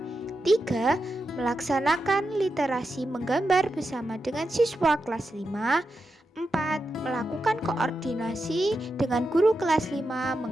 Melaksanakan literasi menggambar bersama dengan siswa kelas 5. 4. Melakukan koordinasi dengan guru kelas 5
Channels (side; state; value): both; normal; correlation 0.88